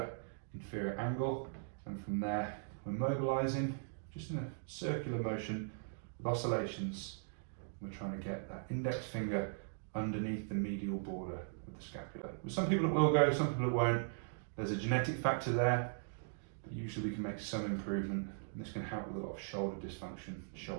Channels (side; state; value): left; silent; digital silence